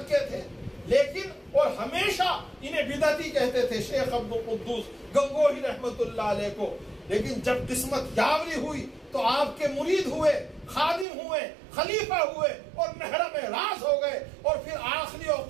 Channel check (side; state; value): left; drops out; at 11.1 s